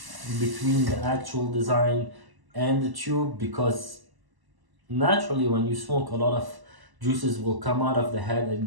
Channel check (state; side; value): late; left; 1.0 ms